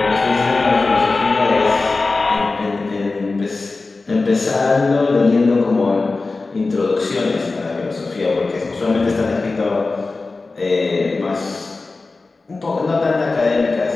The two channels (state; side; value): quieter; right; 3.7 dB